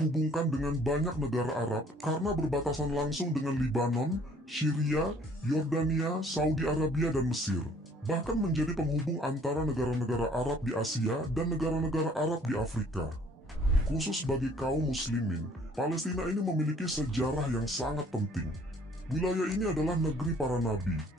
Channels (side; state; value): both; normal; correlation 0.58